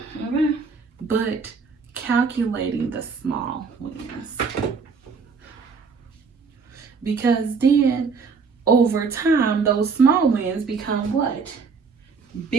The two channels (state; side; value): quieter; left; 5.2 dB